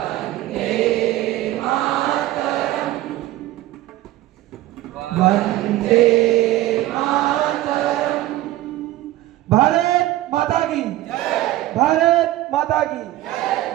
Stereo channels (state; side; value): quieter; left; 15.6 dB